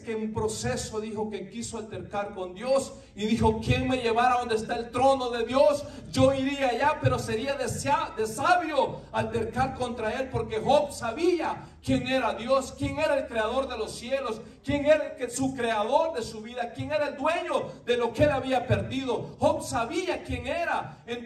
que en proceso dijo que quiso altercar con Dios y dijo: ¿quién me llevara a donde está el trono de Dios? Yo iría allá, pero sería de sabio altercar contra él, porque Job sabía quién era Dios, quién era el creador de los cielos, quién era su creador de su vida, quién era el dueño de lo que él había perdido. Job sabía quién era.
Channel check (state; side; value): identical; both; correlation 1.00